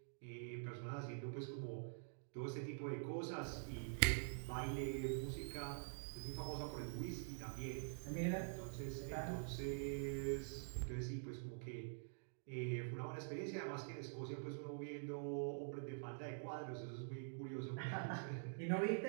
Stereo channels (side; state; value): left; silent; digital silence